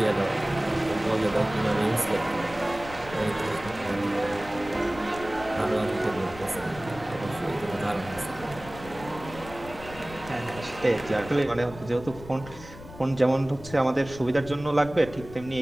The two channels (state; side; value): noise; left; rumble, 15 dB below the sound